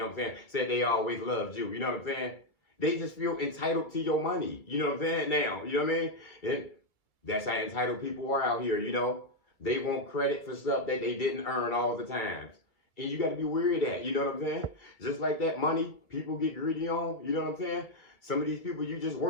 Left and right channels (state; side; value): late; right; 2.3 ms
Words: what I'm saying? Said they always loved you. You know what I'm saying? They just feel entitled to your money. You know what I'm saying? Now, you know what I mean? And that's how entitled people are out here. You know, they want credit for stuff that they didn't earn all the times. And you got to be wary of that. You know what I'm saying? Just like that money people get greedy on. You know what I'm saying? Some of these people you just